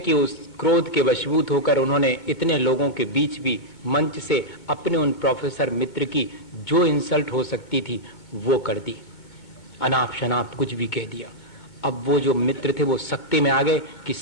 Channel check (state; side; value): late; right; 2.2 ms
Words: उस क्रोध के वशीभूत होकर उन्होंने इतने लोगों के बीच भी मंच से अपने उन प्रोफेसर मित्र की जो इंसल्ट हो सकती थी वो कर दी, अनाप शनाप कुछ भी कह दिया। अब वो जो मित्र थे वो सख्ती में आ गए कि